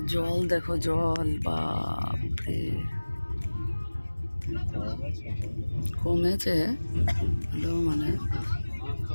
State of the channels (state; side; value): inverted; both; correlation -1.00